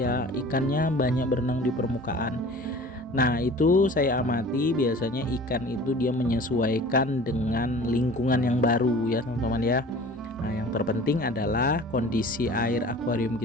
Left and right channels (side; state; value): both; normal; correlation 0.43